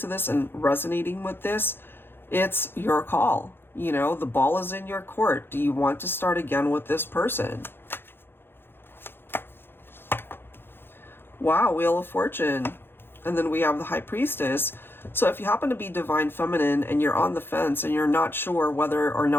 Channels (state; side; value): late; right; 0.10 ms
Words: this and resonating with this, it's your call. You know, the ball is in your court. Do you want to start again with this person? Wow, Wheel of Fortune. And then we have the High Priestess. So if you happen to be Divine Feminine and you're on the fence and you're not sure whether or